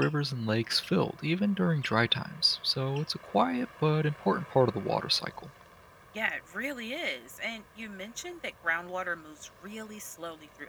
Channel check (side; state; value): both; identical; correlation 1.00